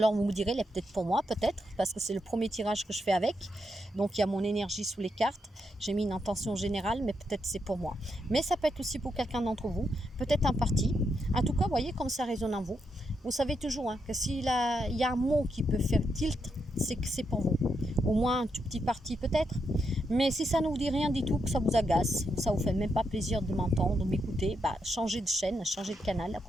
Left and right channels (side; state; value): both; normal; correlation 0.82